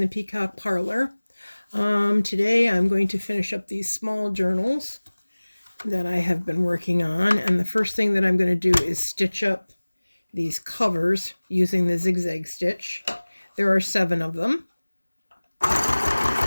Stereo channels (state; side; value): inverted; both; correlation -1.00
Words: Peacock Parlor. Today I'm going to finish up these small journals that I have been working on. And the first thing that I'm going to do is stitch up these covers using the zigzag stitch. There are 7 of them.